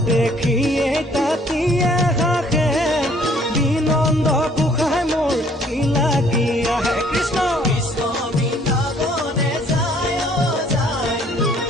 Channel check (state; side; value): normal; both; correlation 0.60